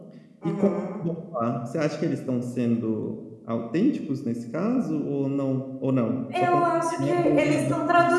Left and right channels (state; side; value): identical; both; correlation 1.00